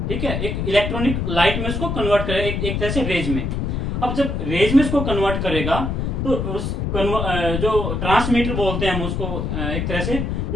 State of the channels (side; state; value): left; noise; rumble, 2 dB below the sound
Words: ठीक है, एक इलेक्ट्रॉनिक लाइट में उसको कन्वर्ट करेगा, एक तरह से रेज में। अब जब रेज में उसको कन्वर्ट करेगा तो जो ट्रांसमीटर बोलते हैं हम उसको, एक तरह से